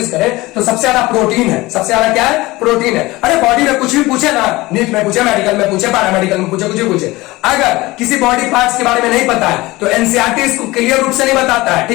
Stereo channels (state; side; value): quieter; right; 20.2 dB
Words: करें तो सबसे ज्यादा प्रोटीन है। सबसे ज्यादा क्या है, प्रोटीन है। अरे बॉडी में कुछ भी पूछे ना, नीट में पूछे, मेडिकल में पूछे, पैरामेडिकल में पूछे, कुछ भी पूछे, अगर किसी बॉडी पार्ट्स के बारे में नहीं पता है तो एनसीईआरटी इसको क्लियर रूप से नहीं बताता है,